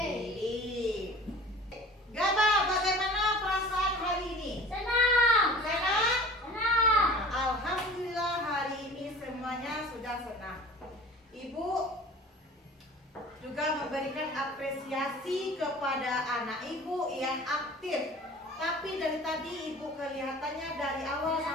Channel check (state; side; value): normal; both; correlation 0.43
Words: Gaba, bagaimana perasaan hari ini? Senang. Senang? Senang. Alhamdulillah hari ini semuanya sudah senang. Ibu juga memberikan apresiasi kepada anak ibu yang aktif. Tapi dari tadi ibu kelihatannya dari awal